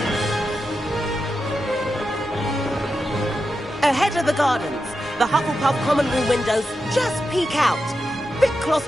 Ahead of the gardens, the Hufflepuff common room windows just peek out. Bit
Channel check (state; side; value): normal; both; correlation 0.89